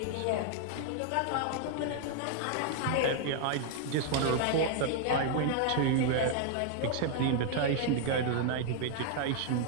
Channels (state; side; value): different; both; correlation 0.00